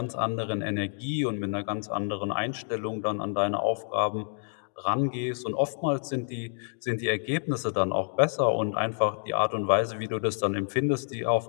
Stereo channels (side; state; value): right; silent; 59 dB below the other